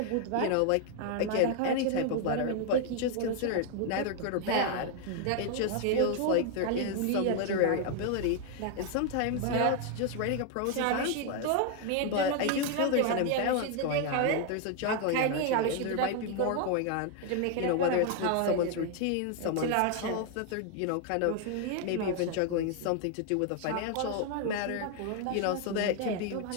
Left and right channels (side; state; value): both; different; correlation 0.00